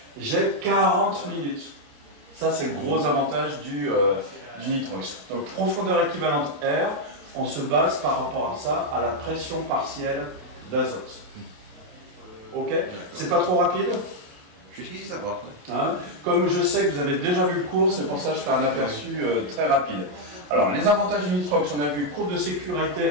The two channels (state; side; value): late; left; 28 ms